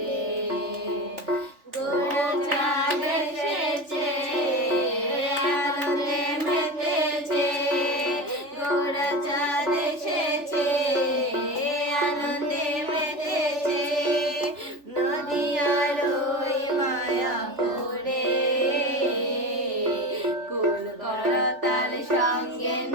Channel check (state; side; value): late; left; 3.4 ms